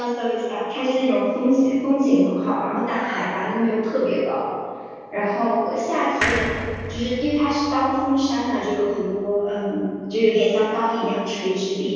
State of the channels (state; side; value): identical; both; correlation 1.00